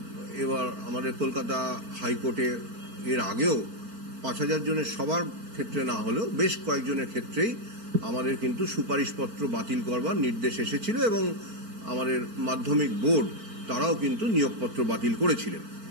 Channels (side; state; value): left; late; 4.4 ms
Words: এবার আমাদের কলকাতা হাইকোর্টে এর আগেও ৫,০০০ জনের সবার ক্ষেত্রে না হলেও বেশ কয়েকজনের ক্ষেত্রেই আমাদের কিন্তু সুপারিশপত্র বাতিল করবার নির্দেশ এসেছিল এবং আমাদের মাধ্যমিক বোর্ড তারাও কিন্তু নিয়োগপত্র বাতিল করেছিলেন।